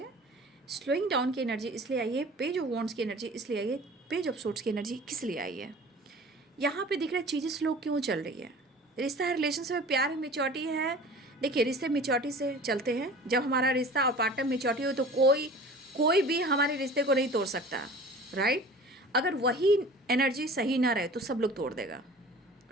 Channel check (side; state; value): both; normal; correlation 0.42